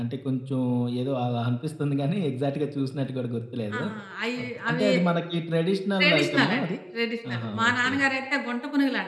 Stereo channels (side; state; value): both; identical; correlation 1.00